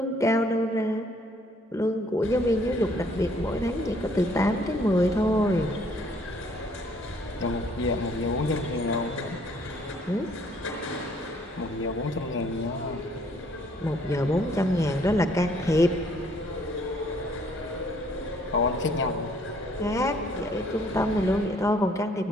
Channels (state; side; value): normal; both; correlation 0.63